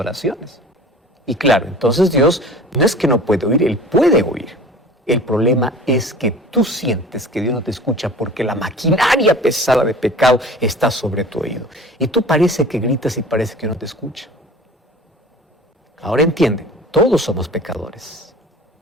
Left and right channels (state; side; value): normal; both; correlation 0.43